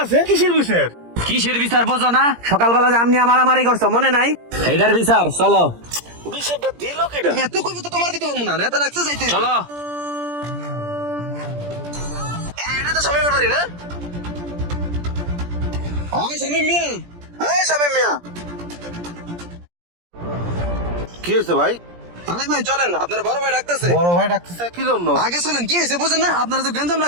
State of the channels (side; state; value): left; late; 17 ms